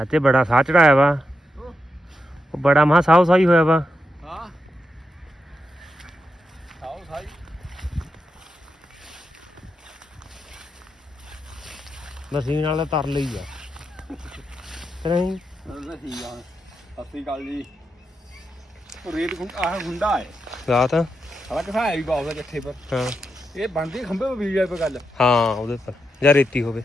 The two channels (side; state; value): both; normal; correlation 0.85